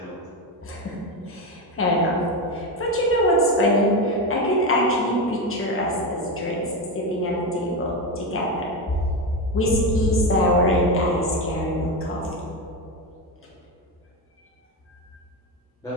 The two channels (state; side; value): normal; both; correlation 0.14